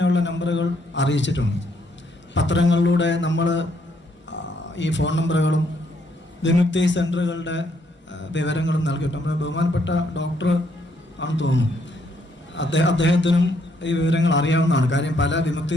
നമ്പറുകൾ അറിയിച്ചിട്ടുണ്ട്. പത്രങ്ങളിലൂടെ നമ്മൾ ഈ ഫോൺ നമ്പറുകളും വിമുക്തി സെൻ്ററുകളുടെ വിവരങ്ങളും നൽകിയിട്ടുണ്ട്. നമ്മുടെ ബഹുമാനപ്പെട്ട ഡോക്ടർ ആണെന്ന് തോന്നുന്നു, അദ്ദേഹത്തിനും ഈ വിവരങ്ങൾ അറിയാവുന്നതാണ്. കാര്യം പല വിമുക്തി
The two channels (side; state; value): both; normal; correlation 0.72